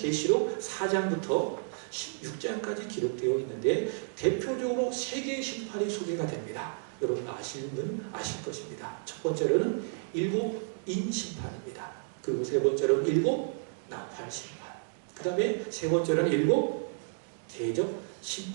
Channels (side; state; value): left; silent; digital silence